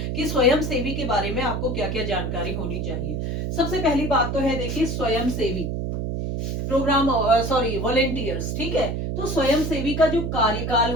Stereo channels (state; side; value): noise; right; hum, 2 dB below the sound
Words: कि स्वयं सेवी के बारे में आपको क्या क्या जानकारी होनी चाहिए। सबसे पहली बात तो है, देखिए, स्वयं सेवी प्रोग्राम, सॉरी, वॉलेंटियर्स। ठीक है, तो स्वयं सेवी का जो कार्यकाल